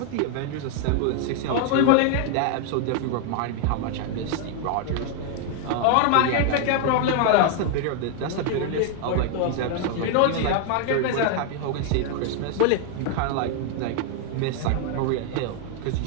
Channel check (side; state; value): both; different; correlation 0.00